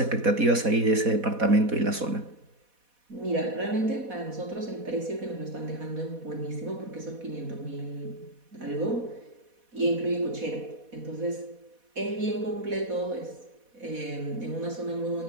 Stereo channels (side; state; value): left; late; 4.1 ms